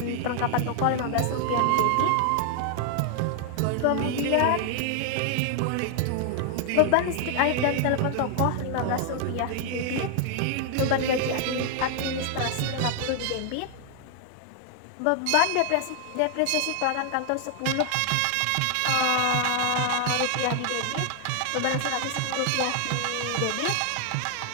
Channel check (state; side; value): different; both; correlation 0.00